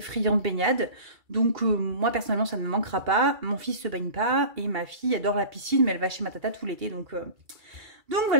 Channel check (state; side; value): late; left; 2.3 ms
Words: de baignade. Donc, moi, personnellement, ça ne me manquera pas. Mon fils se baigne pas et ma fille adore la piscine, mais elle va chez ma tata tout l'été. Donc